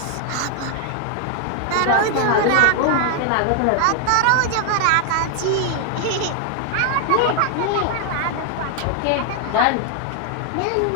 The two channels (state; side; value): different; both; correlation 0.00